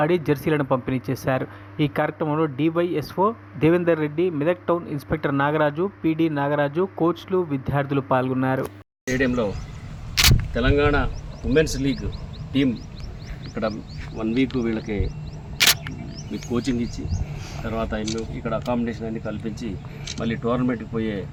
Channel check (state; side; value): identical; both; correlation 1.00